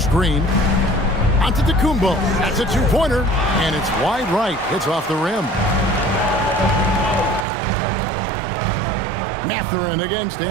Green. Antetokounmpo. That's a 2-pointer. And it's wide right. It's off the rim. Mathurin against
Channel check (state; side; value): drops out; left; at 7.5 s